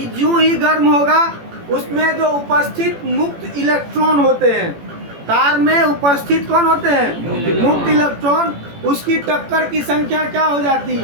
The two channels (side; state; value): left; late; 18 ms